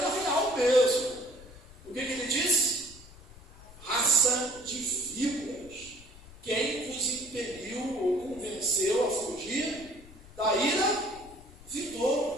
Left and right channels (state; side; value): noise; left; rumble, 20 dB below the sound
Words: real mesmo. O que ele disse? Raça de víboras. Quem vos impeliu ou convenceu a fugir da ira